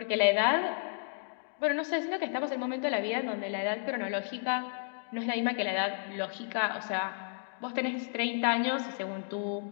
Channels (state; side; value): silent; right; digital silence